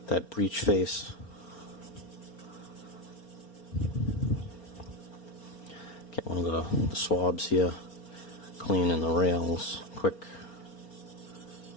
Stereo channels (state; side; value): late; right; 4.3 ms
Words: that breech face. Get one of the swabs here, clean in the rails, quick